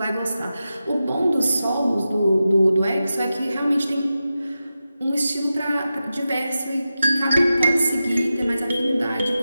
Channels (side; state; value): both; inverted; correlation -0.92